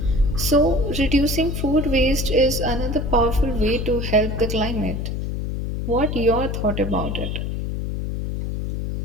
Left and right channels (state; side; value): noise; left; hum, 3 dB below the sound